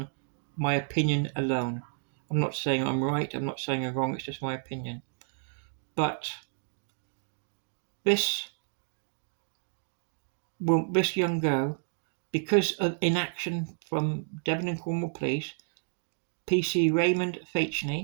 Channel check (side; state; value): left; silent; digital silence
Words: my opinion alone. I'm not saying I'm right, I'm not saying I'm wrong, it's just my opinion. But this young girl, because of inaction from Devon and Cornwall Police, PC Raymond